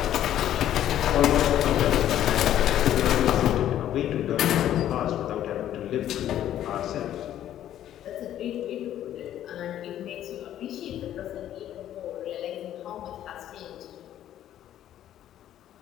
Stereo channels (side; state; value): right; quieter; 11.7 dB